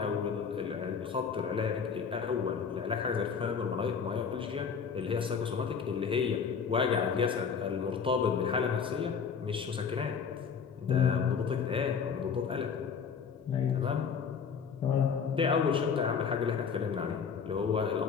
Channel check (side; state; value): right; quieter; 6.3 dB